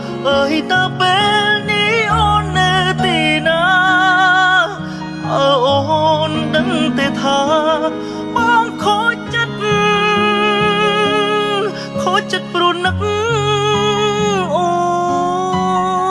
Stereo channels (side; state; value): both; identical; correlation 1.00